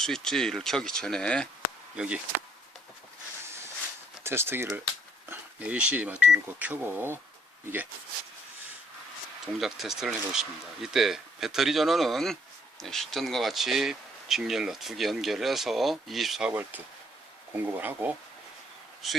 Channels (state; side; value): normal; both; correlation 0.66